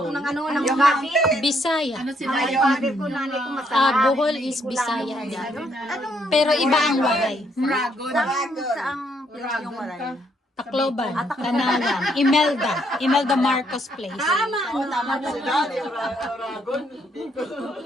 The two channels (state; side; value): normal; both; correlation 0.72